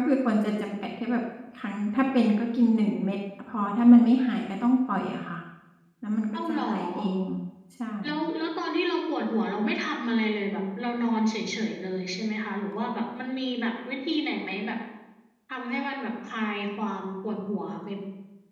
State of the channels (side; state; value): both; identical; correlation 1.00